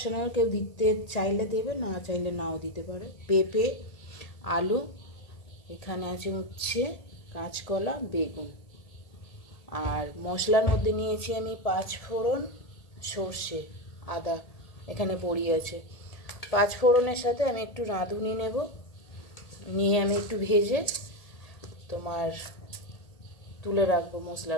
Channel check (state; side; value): late; right; 1.8 ms